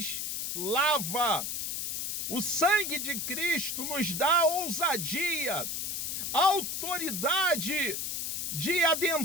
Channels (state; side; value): noise; left; hiss, 2 dB below the sound